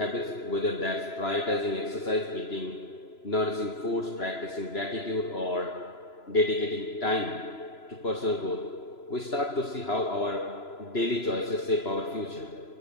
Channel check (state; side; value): late; right; 3.0 ms